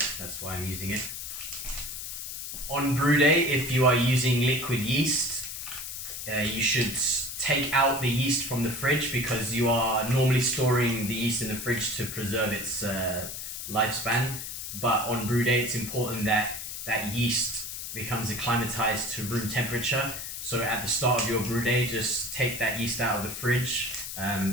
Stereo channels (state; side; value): noise; left; hiss, 7 dB below the sound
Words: that's why I'm using it. On brew day, if you are using liquid yeast, you should take out the yeast from the fridge because you are normally storing the yeast in the fridge to preserve its lifespan. But on brew day, it's important that that yeast becomes acclimatized to room temperature. So at the start of your brew day, just take that yeast out of the fridge.